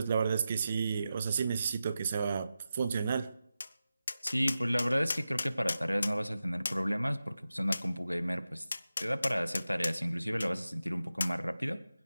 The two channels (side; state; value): both; inverted; correlation -0.92